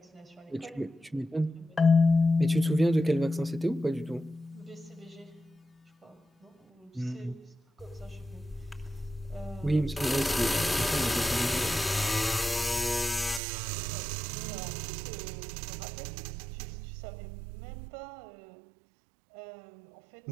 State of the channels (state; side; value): drops out; left; at 13.4 s